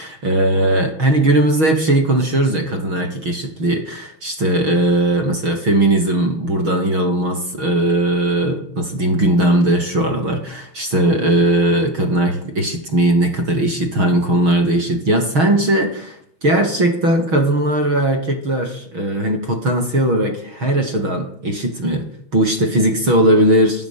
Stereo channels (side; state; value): left; late; 6.3 ms